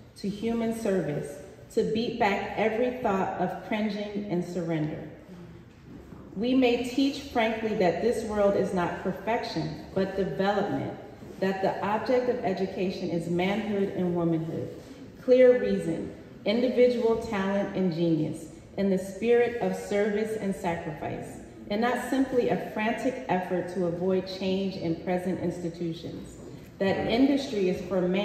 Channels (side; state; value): both; identical; correlation 1.00